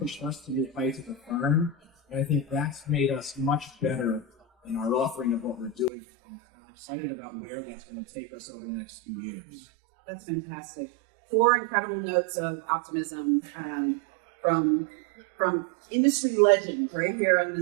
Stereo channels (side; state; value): left; drops out; at 5.9 s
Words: us to new heights as a firm. And I think that's made us much better in our offering of what we're doing. And I'm excited about where that's going to take us over the next few years. That's fantastic. 4 incredible notes of optimism from industry legends right here on